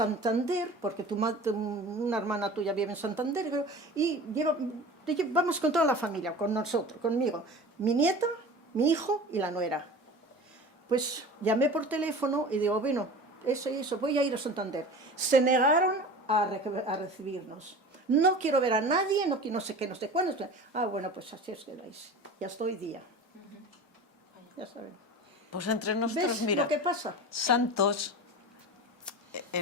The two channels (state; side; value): normal; both; correlation 0.36